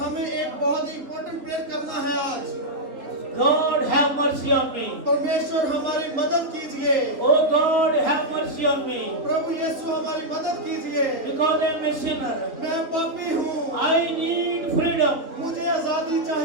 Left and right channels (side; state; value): left; late; 3.0 ms